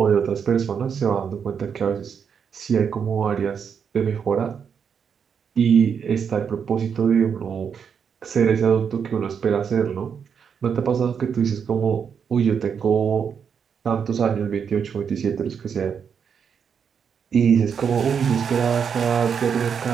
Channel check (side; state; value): left; quieter; 7.0 dB